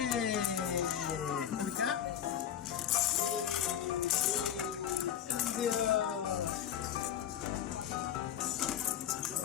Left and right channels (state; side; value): quieter; right; 9.8 dB